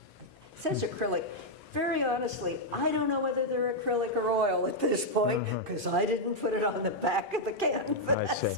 it says acrylic. Very honestly, I don't know whether they're acrylic or oil at this point, because I didn't put it on the back of the canvas I see.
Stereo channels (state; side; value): normal; both; correlation -0.03